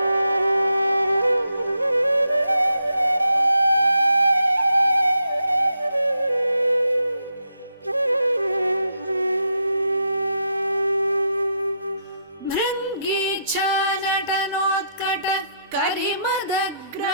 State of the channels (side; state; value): both; inverted; correlation -0.79